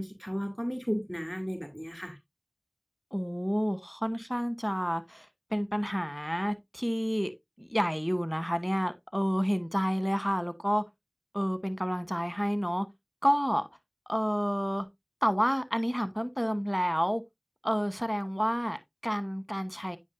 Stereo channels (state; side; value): identical; both; correlation 1.00